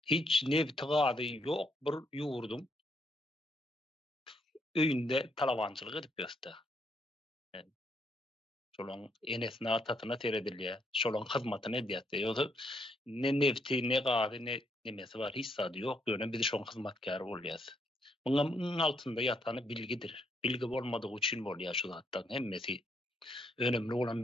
hiç nebtigady ýok bir ýurdum öýünde talawançylyk edip ýöste. Şolaň enesine atatyna teredilýär, şolaň hyzmatyny edýär. Ýöse ne nebti, ne gady, ne nemesi bar, hiç zady ýok. Ýöne biz şoň hyzmatkary bolýas. Muňa altynda ýatany bilgidir. Bilgi bolmadygy üçin bolýar şu zatdan hemmesi. Önemli olan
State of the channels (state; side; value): normal; both; correlation 0.74